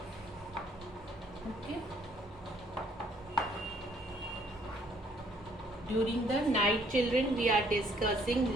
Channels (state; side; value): normal; both; correlation 0.64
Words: Okay. During the night children, we are